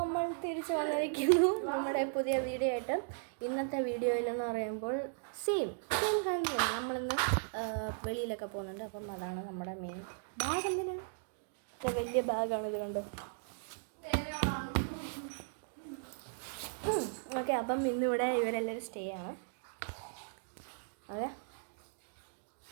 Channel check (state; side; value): silent; left; digital silence